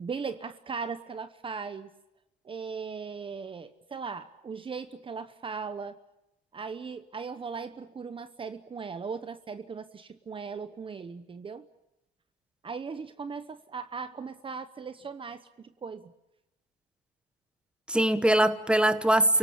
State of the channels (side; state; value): both; normal; correlation 0.55